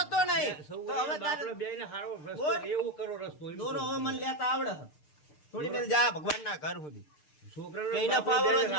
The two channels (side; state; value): right; late; 6.7 ms